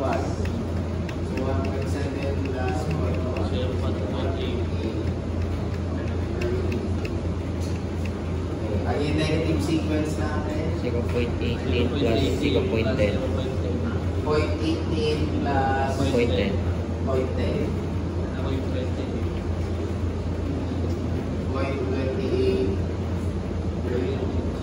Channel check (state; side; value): identical; both; correlation 1.00